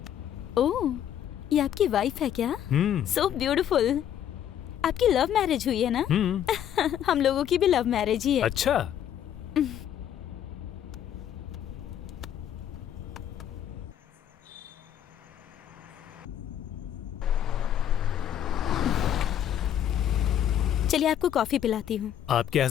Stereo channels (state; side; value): quieter; right; 10.2 dB